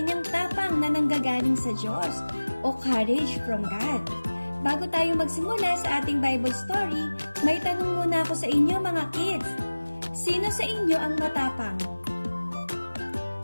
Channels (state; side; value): inverted; both; correlation -1.00